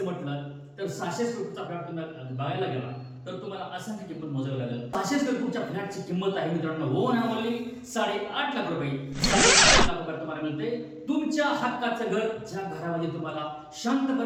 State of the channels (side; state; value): both; identical; correlation 1.00